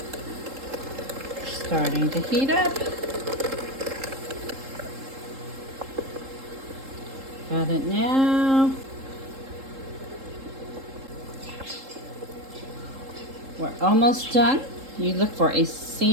Starting to heat up. Got it now. We're almost done. You look for a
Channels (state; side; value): late; left; 3.7 ms